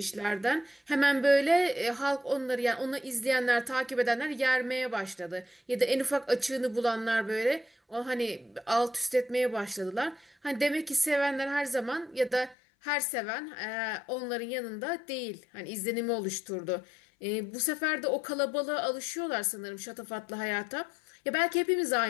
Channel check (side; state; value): right; drops out; at 12.6 s